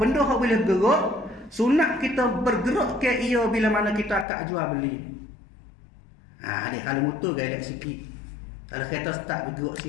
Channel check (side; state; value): right; drops out; at 4.2 s